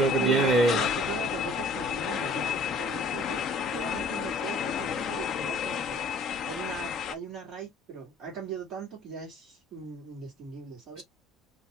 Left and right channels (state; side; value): normal; both; correlation 0.53